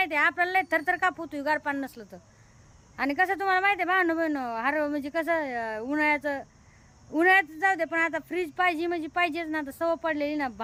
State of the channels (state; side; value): identical; both; correlation 1.00